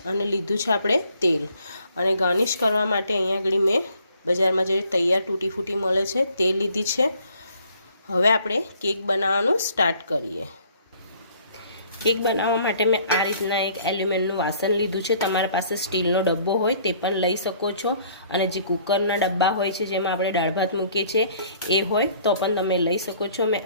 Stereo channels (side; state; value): both; inverted; correlation -0.59